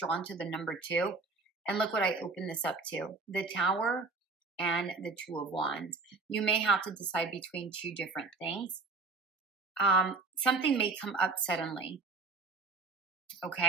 to the number 2. And look what I opened this up to. The Tower and the Two of Wands. You may have to decide between two different things. Something may come up suddenly.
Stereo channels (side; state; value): left; quieter; 4.0 dB